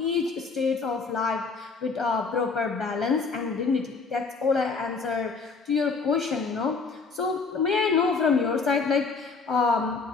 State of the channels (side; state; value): right; quieter; 4.6 dB